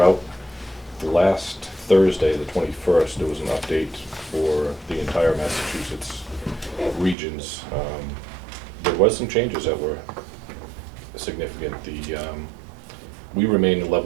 Last Thursday, the 21st, there was an update for the entire Massachusetts regions. There was some changes that were significant. We remain in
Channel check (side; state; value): left; drops out; at 7.2 s